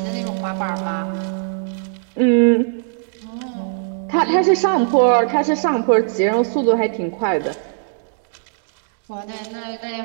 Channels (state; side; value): silent; left; digital silence